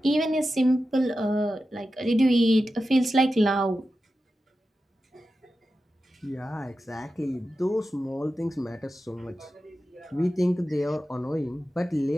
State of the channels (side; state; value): both; normal; correlation 0.92